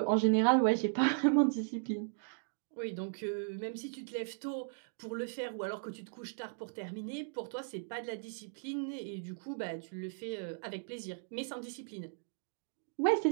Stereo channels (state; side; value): silent; left; digital silence